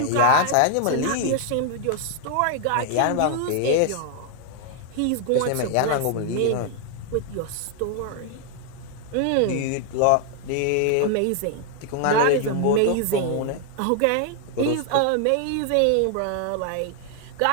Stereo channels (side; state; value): both; different; correlation 0.00